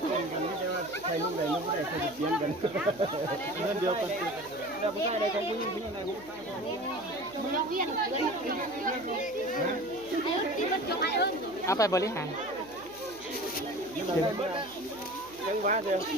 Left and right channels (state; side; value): noise; right; hum, 23 dB below the sound